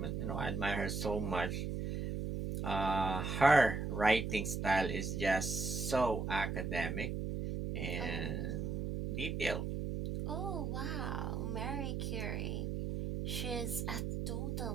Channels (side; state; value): right; noise; hum, 2 dB below the sound